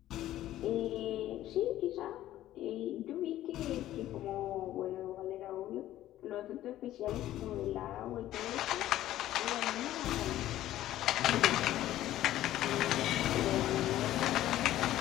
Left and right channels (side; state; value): right; quieter; 13.7 dB